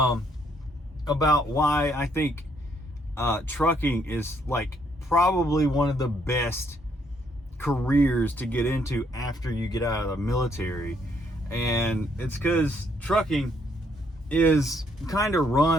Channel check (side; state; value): both; normal; correlation 0.70